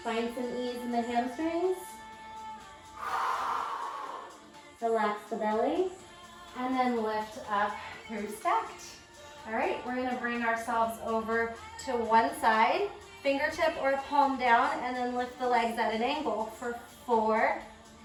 Find some ease in the hamstrings. Relax the belly, and then lift up through stacked. All right, we're gonna bring ourselves over to one side, fingertip or palm down, and then lift the legs at an angle for 4,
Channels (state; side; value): identical; both; correlation 1.00